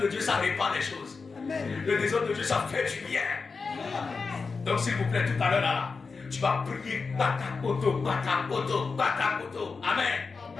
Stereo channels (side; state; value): right; quieter; 4.6 dB